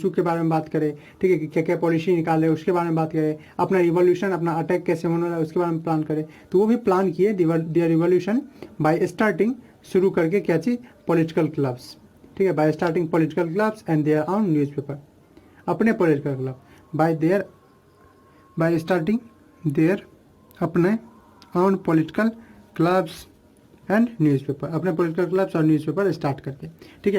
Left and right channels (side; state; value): both; identical; correlation 1.00